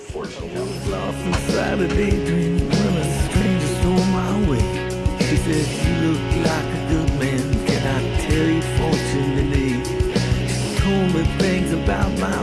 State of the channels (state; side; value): identical; both; correlation 1.00